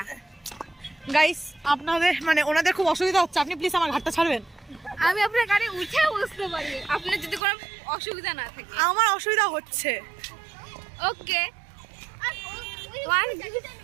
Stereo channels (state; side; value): drops out; left; at 7.4 s